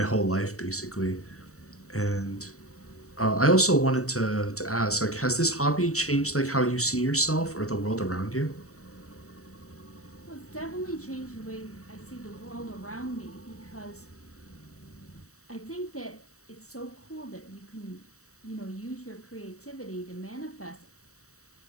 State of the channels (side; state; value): right; late; 0.65 ms